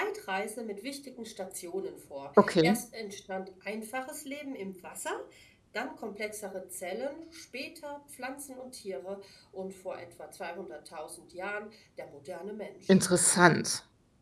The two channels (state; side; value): identical; both; correlation 1.00